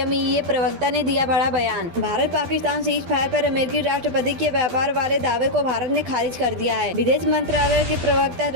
प्रवक्ता ने दिया बड़ा बयान। भारत पाकिस्तान सीज फायर पर अमेरिकी राष्ट्रपति के व्यापार वाले दावे को भारत ने खारिज कर दिया है। विदेश मंत्रालय के प्रवक्ता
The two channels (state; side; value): late; left; 12 ms